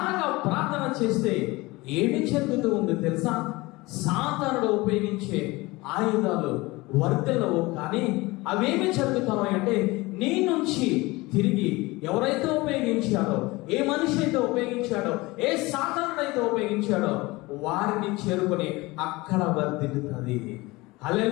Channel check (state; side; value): quieter; right; 22.0 dB